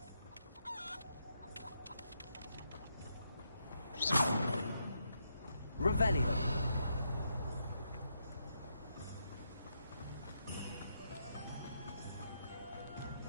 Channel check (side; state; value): both; inverted; correlation -0.80